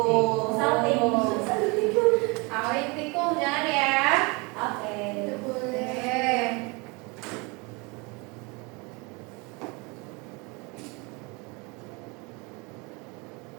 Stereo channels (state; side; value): quieter; left; 28.3 dB